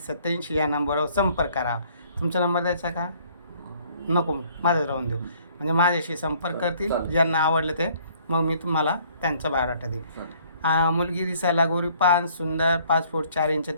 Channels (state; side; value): inverted; both; correlation -0.60